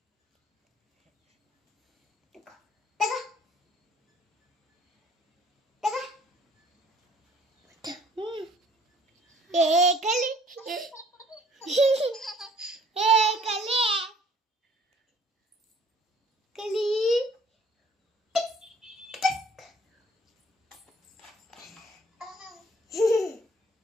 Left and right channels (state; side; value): normal; both; correlation 0.57